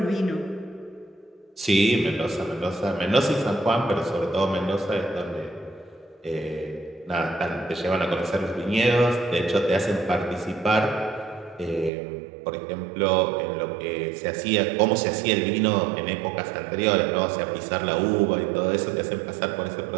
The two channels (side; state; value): left; drops out; at 11.9 s